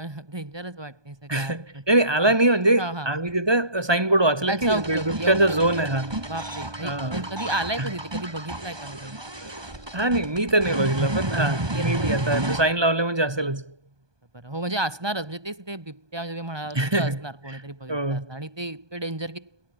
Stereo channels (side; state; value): left; late; 1.2 ms